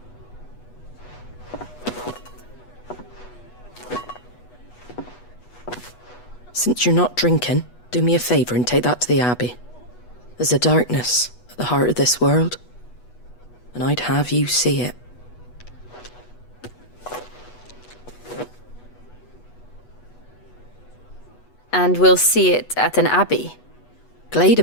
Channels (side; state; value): right; late; 8.2 ms